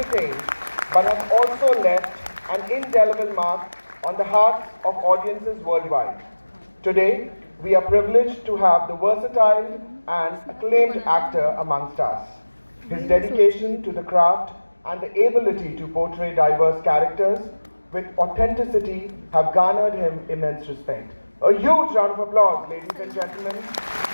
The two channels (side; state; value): both; inverted; correlation -1.00